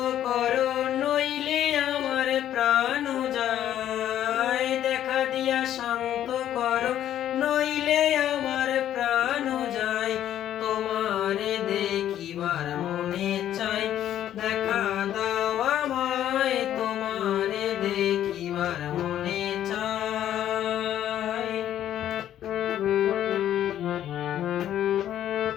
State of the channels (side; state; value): right; quieter; 11.3 dB